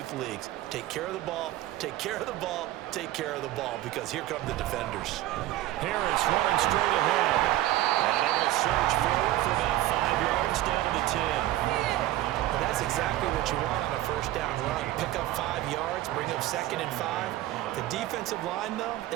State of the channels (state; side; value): quieter; left; 15.3 dB